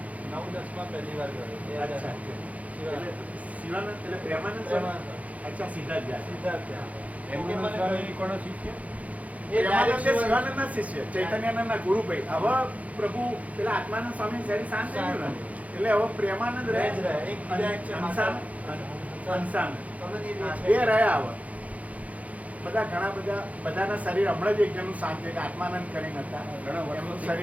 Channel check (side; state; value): left; late; 0.069 ms